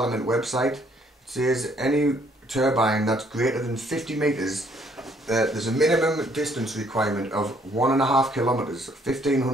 website, it says any turbine that's greater than 50 metres, there's a minimum distance requirement of 1.5 kilometres,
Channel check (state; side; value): normal; both; correlation 0.65